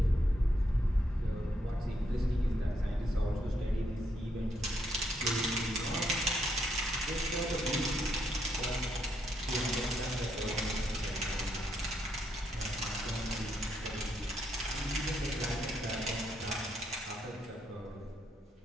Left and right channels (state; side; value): normal; both; correlation 0.77